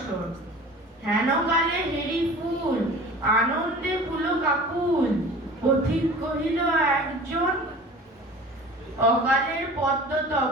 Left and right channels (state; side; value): normal; both; correlation 0.40